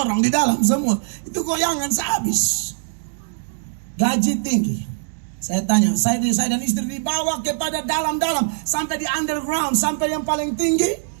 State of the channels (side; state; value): left; silent; digital silence